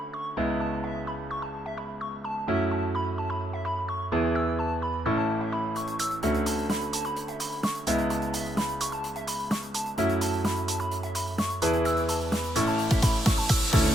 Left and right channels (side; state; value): both; normal; correlation 0.78